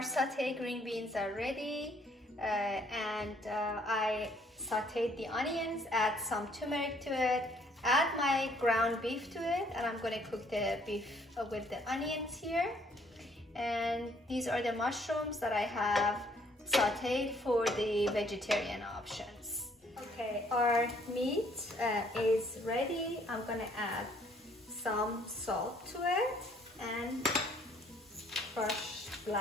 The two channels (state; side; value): normal; both; correlation 0.64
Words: green beans are ready. I sauteed the onions, add some turmeric to it, add my ground beef to it, and I'm going to cook the beef with the onions here. And these are the mushrooms that I have sauteed for the vegetarian options. Okay, our meat is ready. I'm going to add some salt to it and crushed